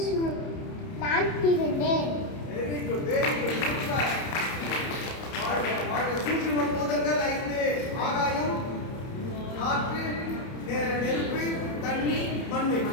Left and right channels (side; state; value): right; late; 30 ms